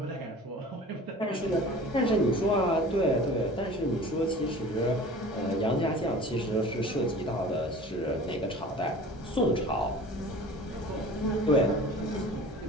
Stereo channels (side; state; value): both; normal; correlation 0.42